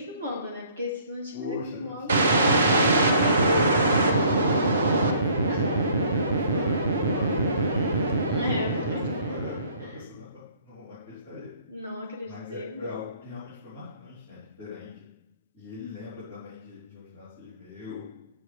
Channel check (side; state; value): both; inverted; correlation -0.57